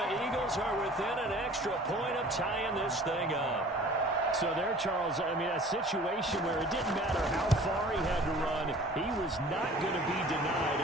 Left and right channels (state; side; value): normal; both; correlation 0.47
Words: Eagles are within an extra point of tying this thing up. So there, Charles, I mean, a situation where it didn't matter how far he had to run, he was not going to be denied,